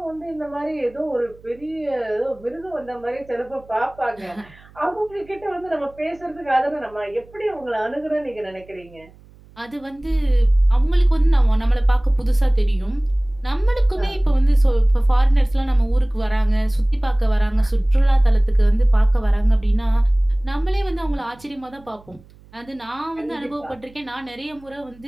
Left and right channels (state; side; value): noise; right; hum, 25 dB below the sound